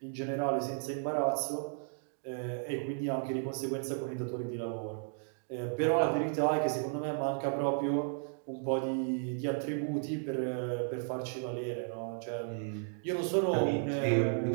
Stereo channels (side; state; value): left; silent; 55 dB below the other